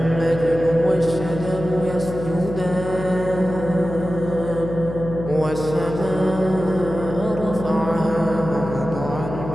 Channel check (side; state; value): left; noise; hum, 8 dB below the sound